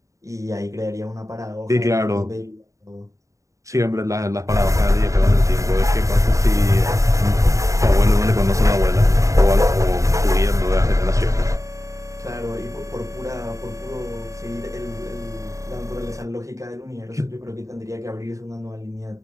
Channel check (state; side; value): late; left; 0.16 ms